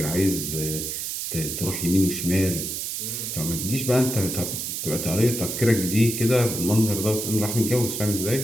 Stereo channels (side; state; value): right; noise; hiss, 4 dB below the sound